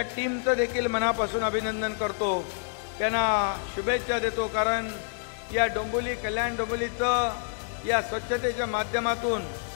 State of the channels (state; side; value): silent; right; 59 dB below the other